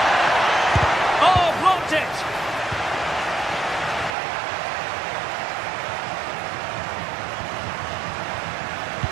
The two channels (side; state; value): left; drops out; at 4.2 s